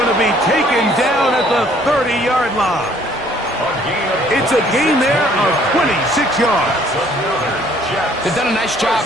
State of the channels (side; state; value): both; normal; correlation 0.60